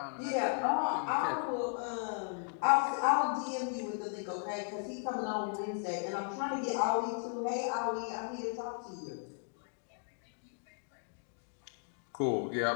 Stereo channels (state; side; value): silent; right; 54 dB below the other